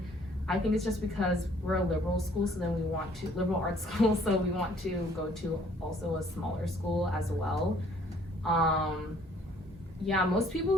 I think it's just because we're a liberal school, so then we want to liberal arts school, so we want to go to also a smaller school as well. Yeah, most people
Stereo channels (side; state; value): both; normal; correlation 0.60